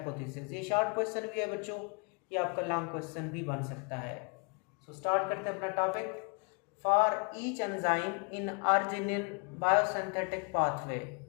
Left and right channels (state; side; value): quieter; right; 33.4 dB